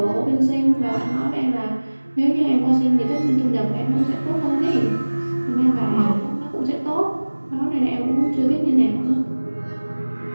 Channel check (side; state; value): both; inverted; correlation -1.00